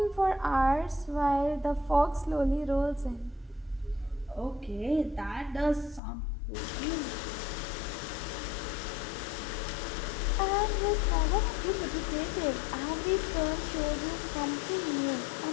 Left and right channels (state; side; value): drops out; right; at 6.0 s